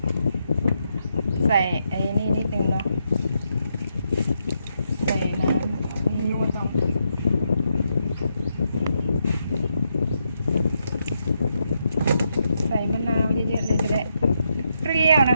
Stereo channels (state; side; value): inverted; both; correlation -0.81